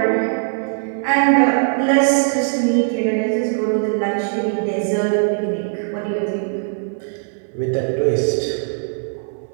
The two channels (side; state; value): left; silent; 66 dB below the other